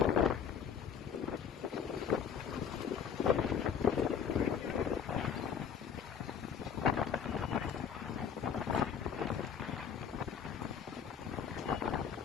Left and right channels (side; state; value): right; quieter; 7.6 dB